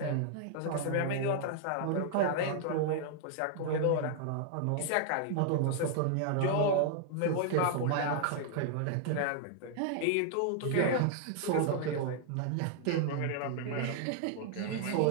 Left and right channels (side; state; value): both; different; correlation 0.00